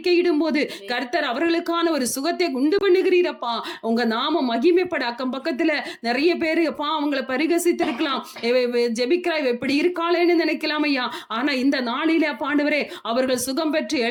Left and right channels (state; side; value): identical; both; correlation 1.00